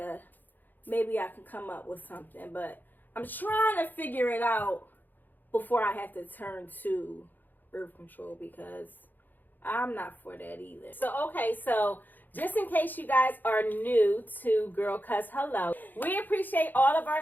maybe I can come up with something. But I'm trying to figure it out before I have to turn to birth control because I'm not for that either. So, okay, so just in case you guys are new to Girl Cuss Hello, we appreciate all of our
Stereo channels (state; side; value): late; right; 0.087 ms